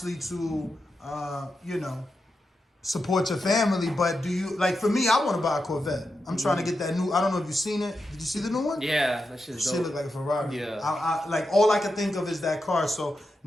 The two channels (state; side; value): normal; both; correlation 0.88